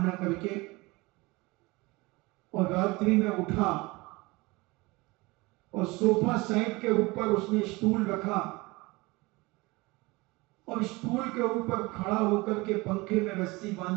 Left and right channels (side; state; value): left; quieter; 23.4 dB